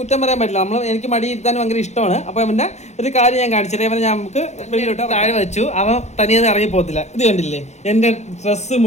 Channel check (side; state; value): right; late; 0.33 ms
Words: കുറ്റം പറയാൻ പറ്റില്ല. എനിക്ക് മടി ഇരുത്താൻ ഭയങ്കര ഇഷ്ടമാണ്. അപ്പോൾ അവൻ്റെ ഒരു കാര്യം ഞാൻ കാണിച്ചു തരാം. അവനെ ഞാൻ നമുക്ക് വെളിയിലോട്ട് താഴെ വെച്ചു. അവൻ തനിയെ ഇറങ്ങി പോകത്തില്ല. ഇത് കണ്ടില്ലേ, എൻ്റെ ഡ്രസ്സ്